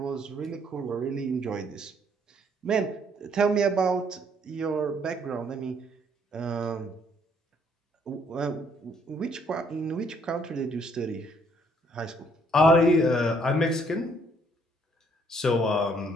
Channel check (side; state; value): both; normal; correlation 0.66